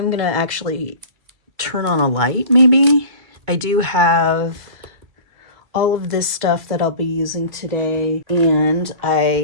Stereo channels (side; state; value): left; late; 2.3 ms